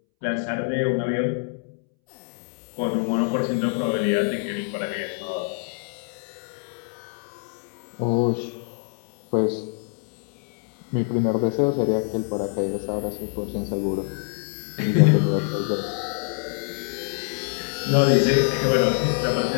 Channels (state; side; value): silent; right; 62 dB below the other